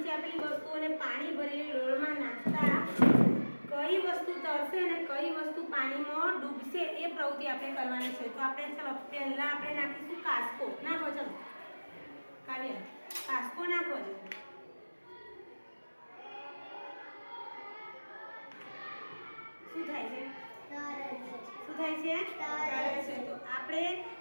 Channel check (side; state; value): both; inverted; correlation -1.00